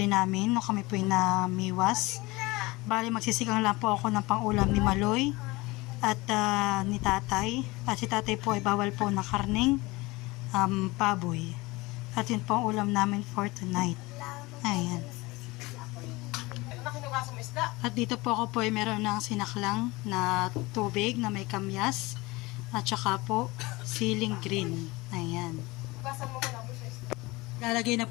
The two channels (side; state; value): right; quieter; 22.3 dB